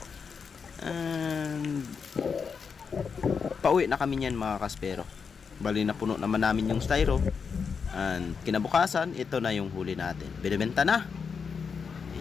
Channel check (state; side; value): quieter; right; 5.9 dB